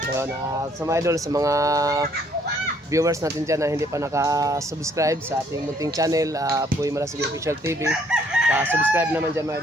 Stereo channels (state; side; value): normal; both; correlation 0.64